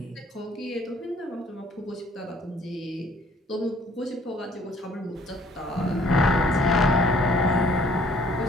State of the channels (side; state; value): both; normal; correlation 0.58